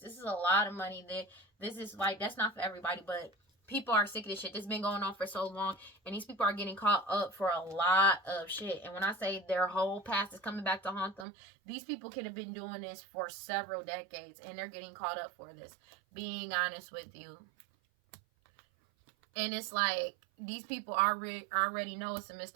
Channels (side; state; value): left; drops out; at 11.2 s